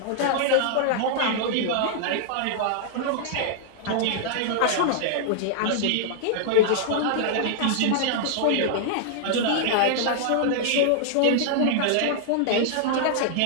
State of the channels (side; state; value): both; different; correlation -0.01